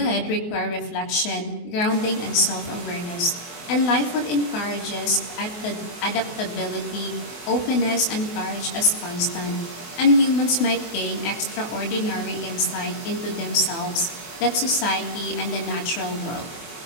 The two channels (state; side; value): late; right; 24 ms